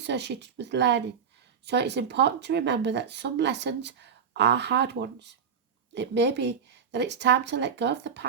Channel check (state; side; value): quieter; left; 7.0 dB